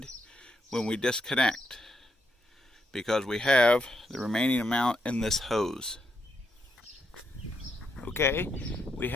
when we disconnect, because we have the remaining amount in this hose. Okay, we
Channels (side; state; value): both; normal; correlation 0.78